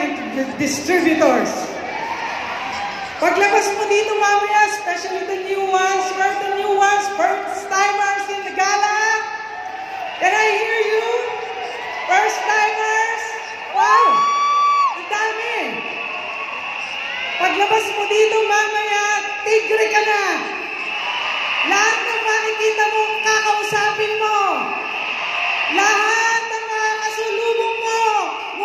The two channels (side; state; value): both; identical; correlation 1.00